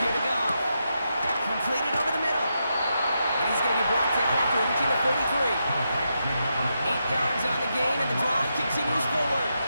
here to go. Completed over the middle. And he's going to be brought down after reaching the 43. 8 yards on the gain, and the drive continues forward.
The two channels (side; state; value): both; inverted; correlation -0.84